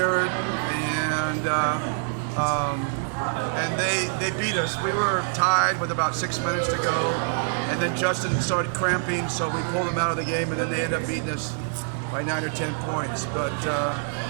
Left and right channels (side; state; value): left; silent; 61 dB below the other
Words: and they beat us. We were tied with about 6 minutes to go, and then Justin started cramping, so we pulled him out of the game, and then they ended up beating us by 9 or 10 points. But